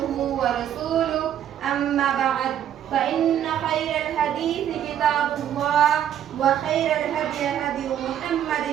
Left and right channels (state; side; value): quieter; left; 10.2 dB